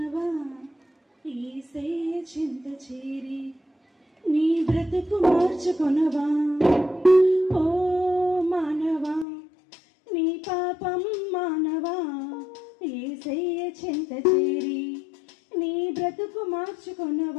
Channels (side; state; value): right; drops out; at 9.2 s